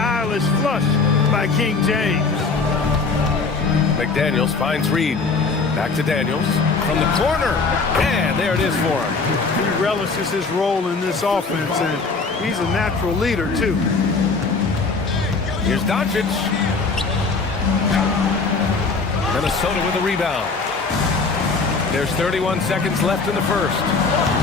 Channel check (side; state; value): right; quieter; 4.3 dB